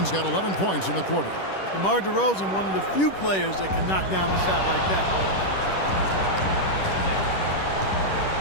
got 11 points in the quarter. DeMar DeRozan, one of the few players that can knock down a shot like that.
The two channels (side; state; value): right; late; 10 ms